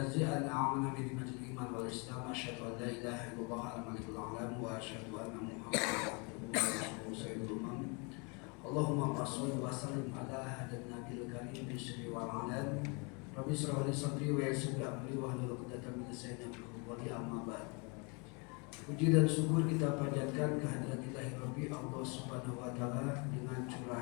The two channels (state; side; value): quieter; right; 32.5 dB